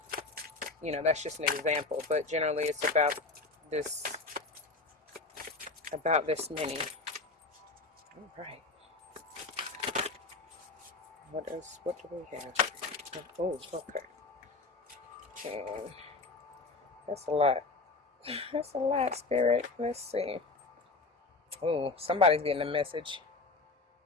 that's just an example. But generally it's about this many. All right. What do we have? Oh, okay. And that's a lot. That's a lot, Spirit. Let's see. Oh, somebody's getting a message.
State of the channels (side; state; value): right; quieter; 3.6 dB